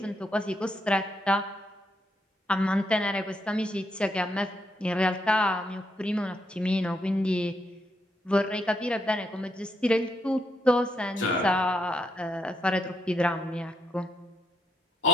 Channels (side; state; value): both; normal; correlation 0.77